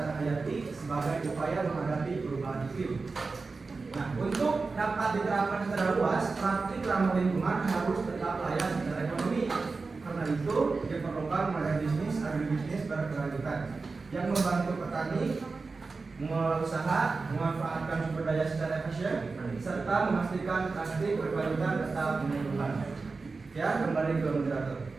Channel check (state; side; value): quieter; left; 4.1 dB